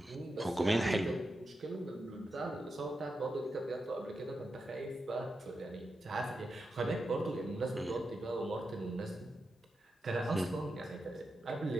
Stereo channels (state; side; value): normal; both; correlation 0.88